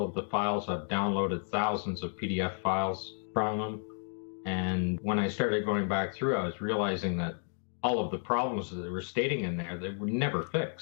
of the files. I've downloaded thousands of PDF files from them. And when I started going back through, I was realizing that all of the problems that they were stating in there, they were never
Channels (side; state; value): right; silent; 56 dB below the other